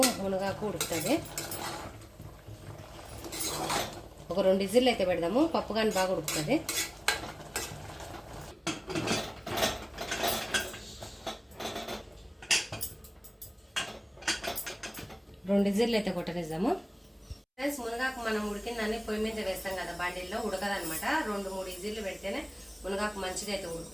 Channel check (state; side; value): identical; both; correlation 1.00